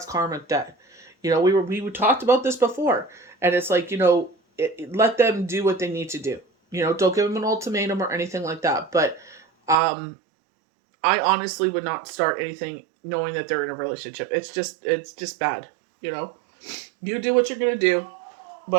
karmic debt. We talked about this before, and it's like, let them do what they need to do. Don't give them an ultimatum or anything like that. But I honestly would not start anything knowing that they're in a relationship. It's just bad. You do what you're gonna do,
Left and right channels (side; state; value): left; drops out; at 9.8 s